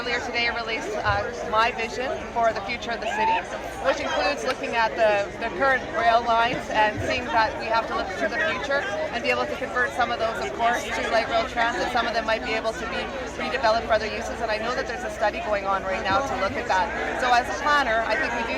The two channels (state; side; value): identical; both; correlation 1.00